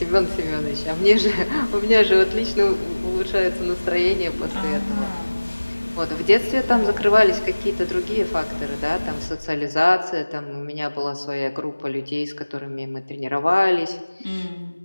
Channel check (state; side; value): inverted; both; correlation -1.00